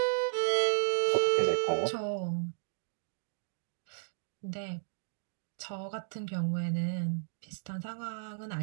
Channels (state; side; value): silent; left; digital silence